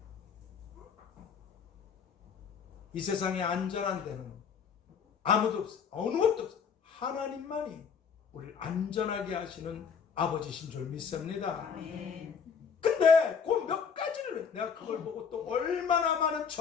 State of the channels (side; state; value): right; quieter; 6.5 dB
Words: 이 세상에 안전한 데는 아무도 없어. 어느 것도 없어. 하나님만이 우리를 안전하게 하시는 아버지신 줄 믿습니다. 근데 그 몇 가지를 내가 그걸 보고 또 얼마나 많은